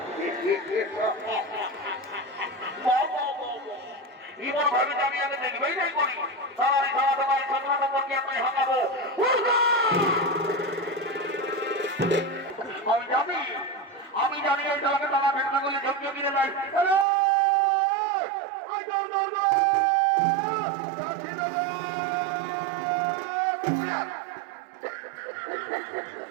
এবার ভাবে আমি আগে দেখবেই নাই করি তারাই সারা তোমার ছোট নম্বরকে আমি হাঁকাবো আমি জানি এই দলকে তারা ভেটনা করলে ঝুঁকিয়ে কিনে দেয়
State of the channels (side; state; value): left; drops out; at 17.1 s